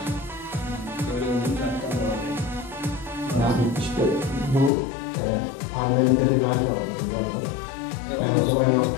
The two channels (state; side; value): drops out; right; at 4.7 s